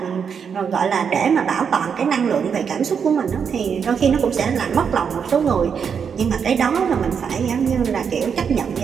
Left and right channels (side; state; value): left; quieter; 6.8 dB